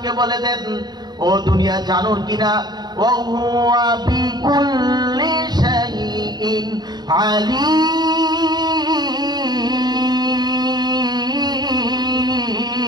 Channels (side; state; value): left; late; 0.20 ms